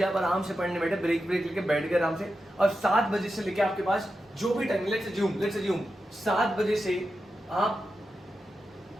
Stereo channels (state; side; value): normal; both; correlation 0.90